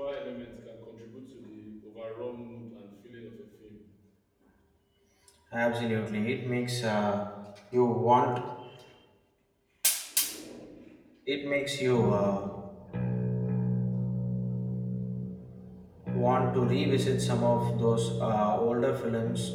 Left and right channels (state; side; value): identical; both; correlation 1.00